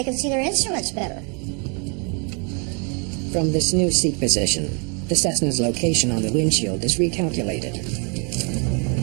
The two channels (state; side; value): quieter; left; 36.1 dB